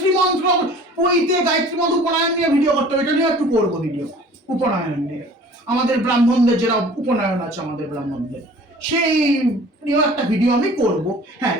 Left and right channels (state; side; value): normal; both; correlation 0.48